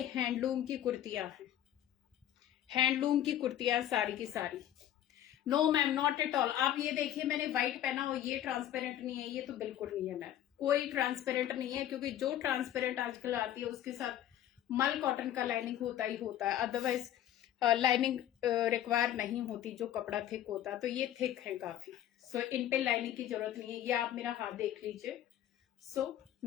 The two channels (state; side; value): quieter; right; 11.9 dB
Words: हैंडलूम की कुर्तियां हैं, हैंडलूम की कुर्तियां सारी की सारी। No ma'am, not at all. आप ये देखिए, मैंने व्हाइट पहना और ये ट्रांसपेरेंट नहीं है, ये तो बिल्कुल नहीं है मैम, कोई ट्रांसपेरेंट नहीं है, क्योंकि जो ट्रांसपेरेंट आजकल आती है उसके साथ मल कॉटन का लाइनिंग होता ही होता है, अदरवाइज लाइनिंग रिक्वायर नहीं होती, जो कपड़ा थिक होता है, तो ये थिक है काफी। सो इन पे लाइनिंग की जरूरत नहीं है। ये आप मेरा हाथ देख लीजिए, so